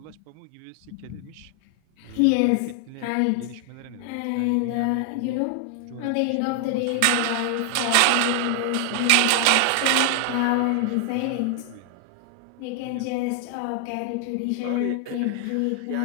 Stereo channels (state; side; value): different; both; correlation 0.00